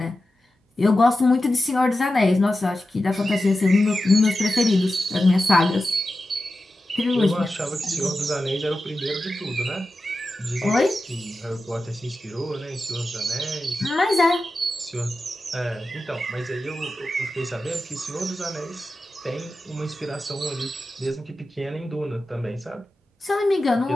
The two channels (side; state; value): both; normal; correlation 0.92